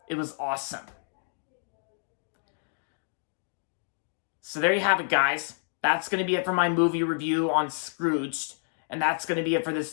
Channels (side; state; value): right; silent; digital silence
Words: It was awesome. So there you have it, guys. That's gonna be it for my movie review on Scrooged, and that's gonna be it for